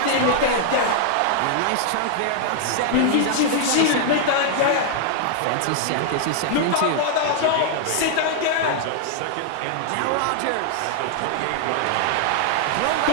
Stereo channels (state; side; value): different; both; correlation -0.01